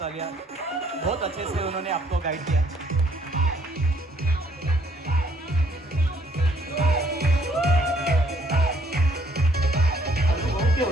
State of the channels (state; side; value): normal; both; correlation 0.65